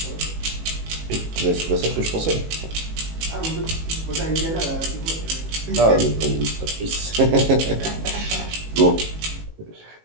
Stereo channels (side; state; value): left; late; 18 ms